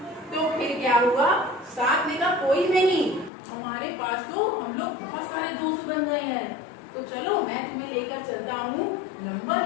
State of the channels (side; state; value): right; drops out; at 3.3 s